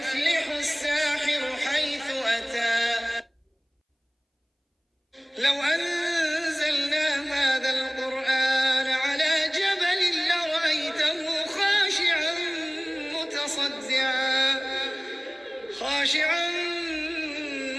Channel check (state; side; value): identical; both; correlation 1.00